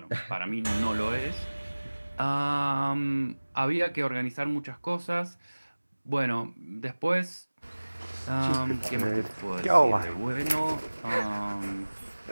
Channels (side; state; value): both; inverted; correlation -1.00